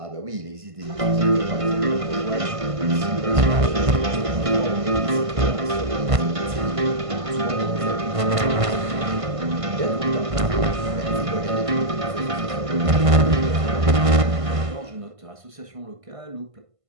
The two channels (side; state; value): left; late; 1.5 ms